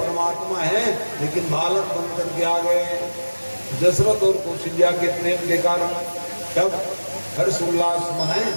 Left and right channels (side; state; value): both; inverted; correlation -1.00